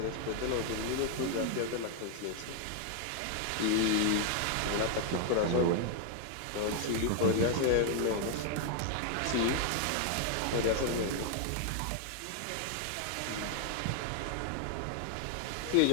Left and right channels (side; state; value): both; different; correlation 0.00